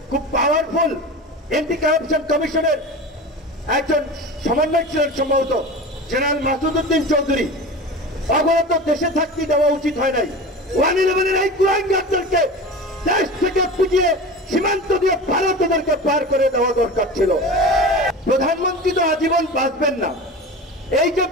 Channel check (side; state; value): both; normal; correlation 0.32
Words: খুব পাওয়ারফুল এন্টি কারাপশন কমিশনের একজন সমন্বয় ছিলেন সম্ভবত জেনারেল মাসুদউদ্দিন চৌধুরী। অবরত দেশে থাকতে দেওয়া উচিত হয় নাই। 1/11 এই কুলাঙ্গারদেরকে দেশ থেকে পিটিয়ে সীমান্ত দিয়ে ভারতদেরকে পার করে দেওয়া দরকার ছিল। প্রধানমন্ত্রী তো আজীবন বাঁচবেন না। এই যে